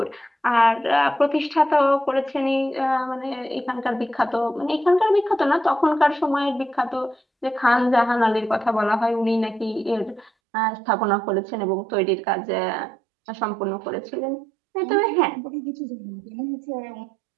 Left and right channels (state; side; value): drops out; left; at 10.3 s